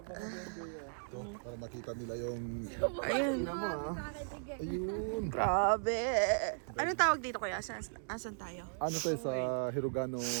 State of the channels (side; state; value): left; silent; digital silence